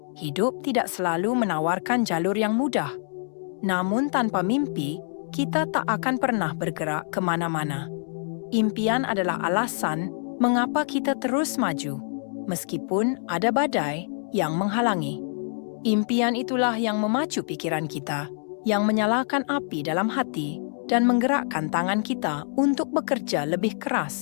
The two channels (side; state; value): right; silent; digital silence